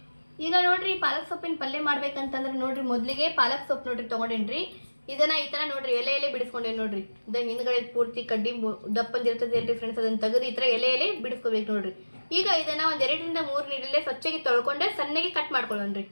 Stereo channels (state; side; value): inverted; both; correlation -1.00